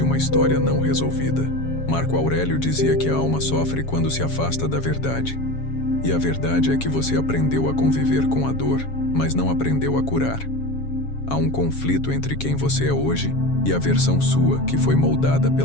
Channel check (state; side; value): late; right; 7.2 ms